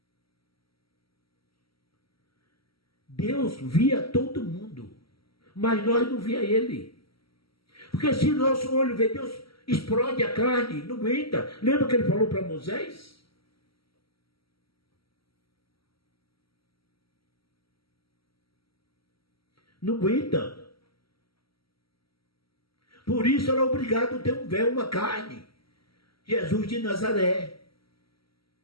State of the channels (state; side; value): late; right; 0.75 ms